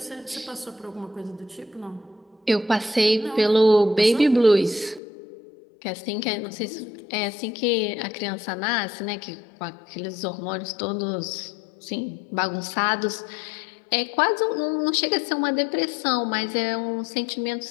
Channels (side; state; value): right; drops out; at 5.0 s